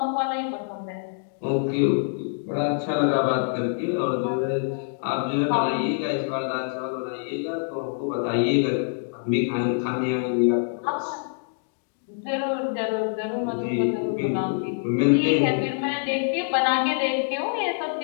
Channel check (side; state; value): right; silent; digital silence